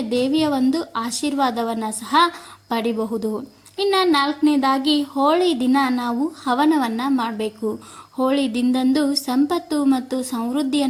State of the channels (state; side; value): identical; both; correlation 1.00